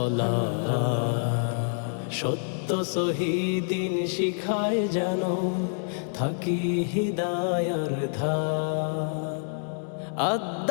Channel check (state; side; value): silent; right; 60 dB below the other